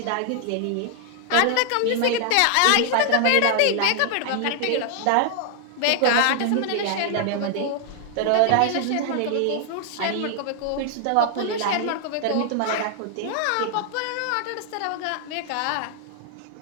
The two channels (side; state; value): both; different; correlation 0.00